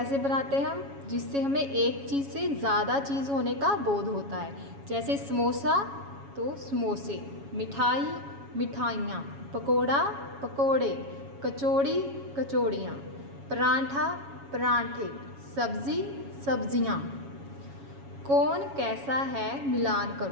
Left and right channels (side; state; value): left; late; 7.2 ms